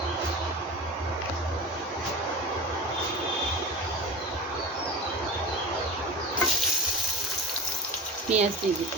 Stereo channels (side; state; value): both; normal; correlation 0.29